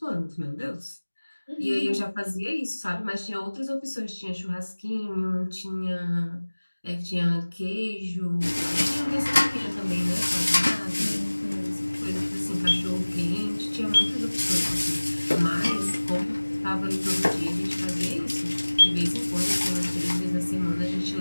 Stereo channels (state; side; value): inverted; both; correlation -1.00